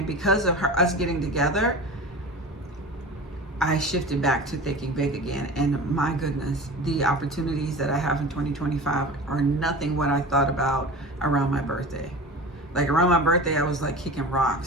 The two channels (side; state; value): both; normal; correlation 0.34